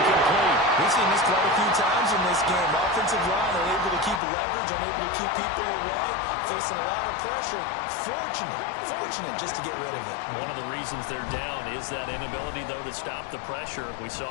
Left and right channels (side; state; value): right; drops out; at 4.2 s